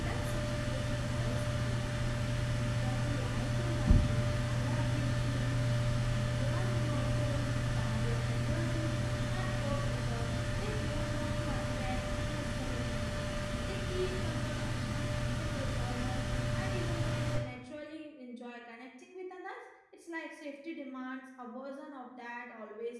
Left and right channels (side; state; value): both; identical; correlation 1.00